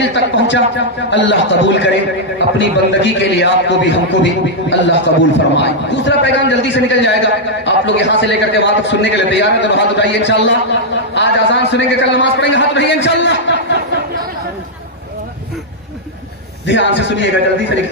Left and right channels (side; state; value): both; normal; correlation -0.05